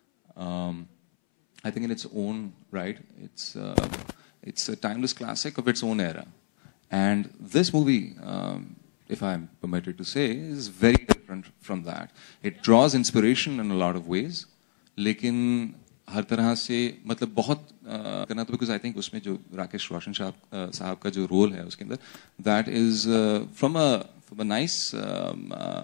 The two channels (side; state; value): right; silent; 60 dB below the other